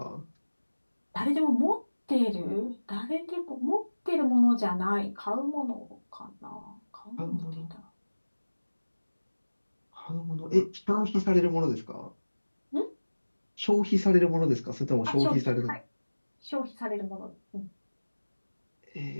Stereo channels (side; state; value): both; inverted; correlation -1.00